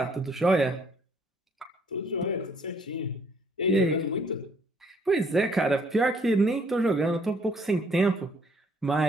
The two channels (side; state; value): both; normal; correlation 0.63